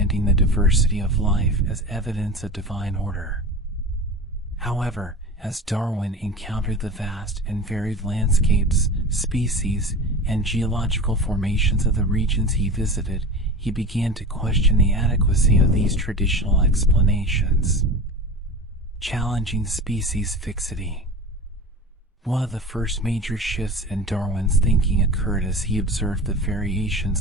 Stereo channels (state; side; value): normal; both; correlation 0.31